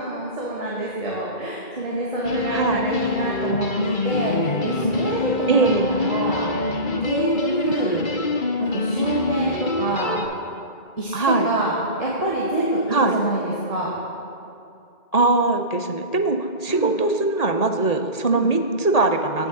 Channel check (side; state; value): right; late; 1.8 ms